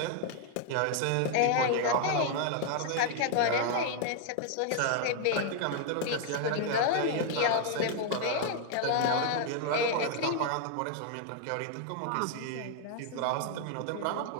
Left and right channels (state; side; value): different; both; correlation 0.00